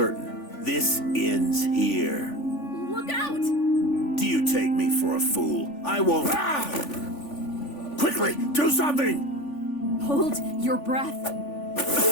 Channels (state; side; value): late; right; 3.5 ms